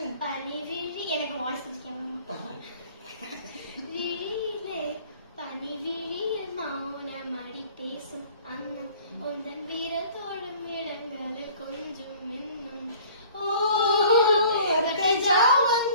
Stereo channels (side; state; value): both; inverted; correlation -0.50